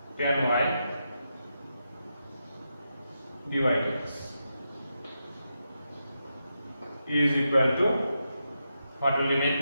10y dy dx is equal to, what will remain?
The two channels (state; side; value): inverted; both; correlation -0.86